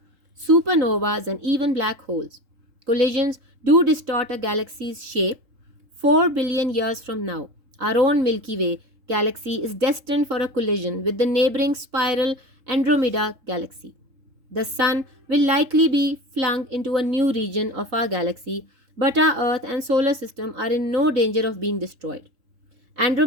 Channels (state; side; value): late; left; 3.7 ms